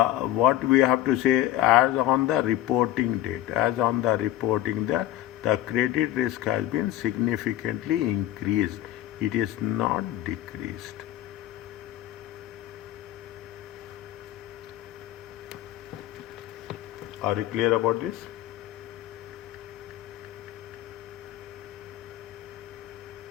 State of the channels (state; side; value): quieter; right; 13.7 dB